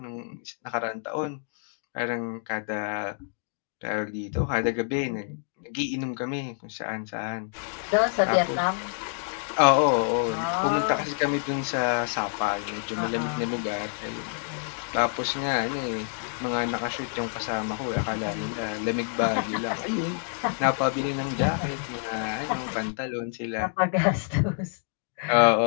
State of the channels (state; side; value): silent; right; 60 dB below the other